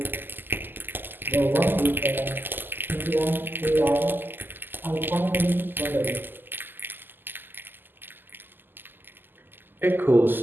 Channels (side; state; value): left; late; 0.093 ms